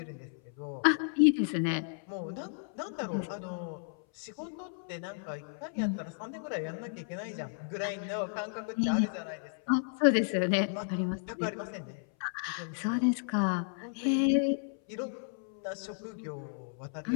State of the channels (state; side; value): silent; right; 56 dB below the other